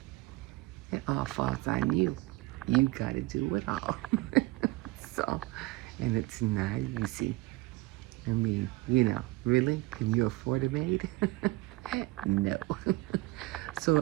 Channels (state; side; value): quieter; left; 20.6 dB